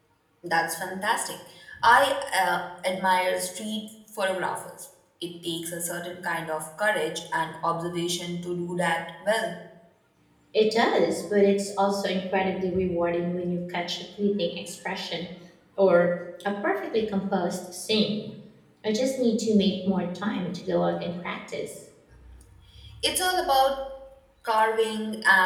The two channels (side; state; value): both; identical; correlation 1.00